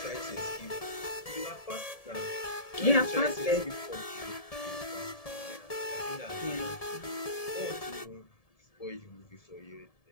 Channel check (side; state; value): right; late; 1.7 ms